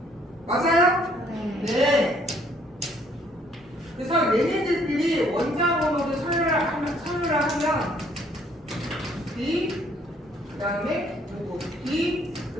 맞아요? 네. 네. 그래서 얘네들끼리 원자 번호를 서류를 하면 B, 그 다음에 누구? B, 그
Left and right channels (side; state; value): both; normal; correlation 0.64